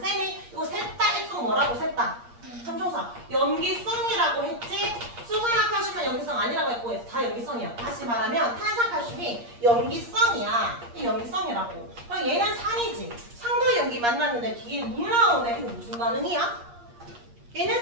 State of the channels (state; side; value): late; left; 8.5 ms